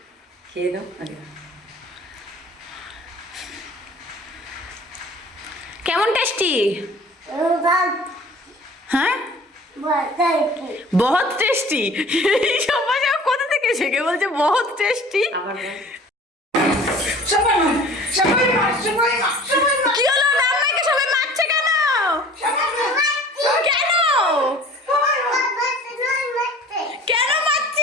খেয়ে নাও আগে। কেমন টেস্টি? হ্যাঁ बहुत टेस्टी। এই সব ভাষা কোথা থেকে শিখে বলছে बहुत টেস্টি। কি হলো রান্নাকে সবাই মারছে কেন? কেন কেন মারছে?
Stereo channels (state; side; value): normal; both; correlation 0.46